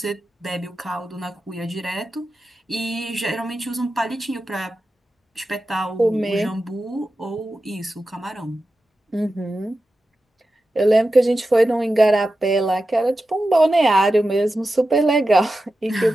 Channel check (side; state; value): both; normal; correlation 0.92